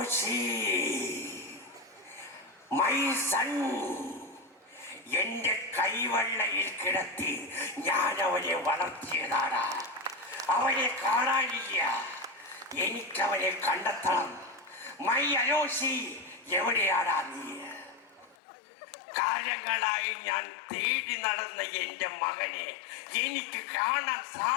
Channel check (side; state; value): right; drops out; at 18.4 s